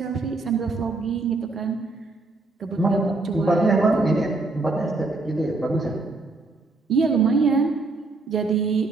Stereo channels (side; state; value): left; quieter; 3.4 dB